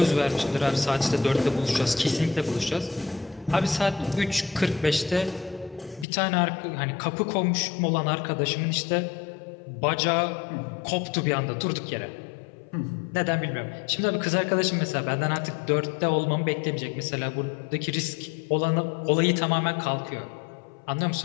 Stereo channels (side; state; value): right; drops out; at 6.1 s